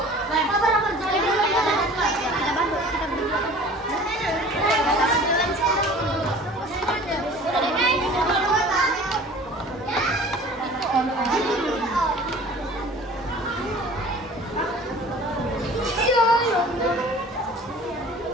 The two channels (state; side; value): normal; both; correlation 0.45